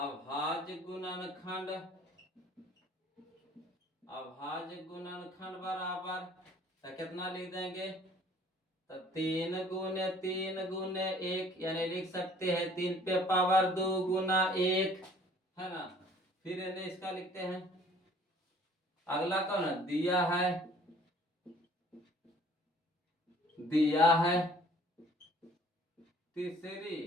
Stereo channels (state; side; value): normal; both; correlation 0.55